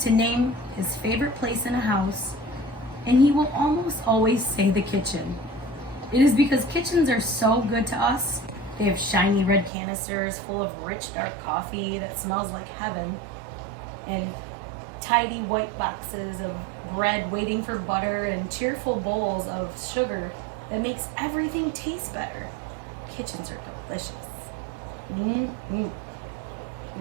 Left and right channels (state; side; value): drops out; left; at 9.7 s